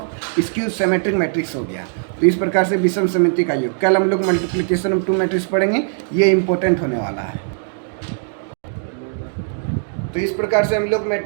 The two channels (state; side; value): silent; left; digital silence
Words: skew symmetric matrix हो गया। तो इस प्रकार से विषम समिति का योग। कल हम लोग मल्टीप्लिकेशन ऑफ 2 मैट्रिक्स पढ़ेंगे, ये इंपॉर्टेंट होने वाला है। तो इस प्रकार से हम लोग